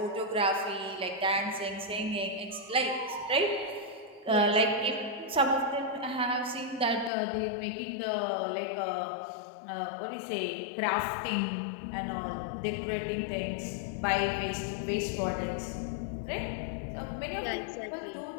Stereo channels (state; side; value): drops out; right; at 7.1 s